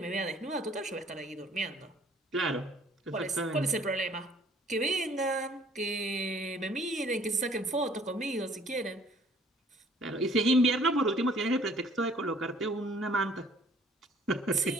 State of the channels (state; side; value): normal; both; correlation 0.57